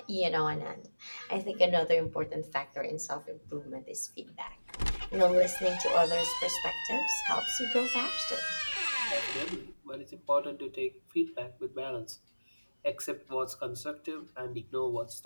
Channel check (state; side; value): inverted; both; correlation -1.00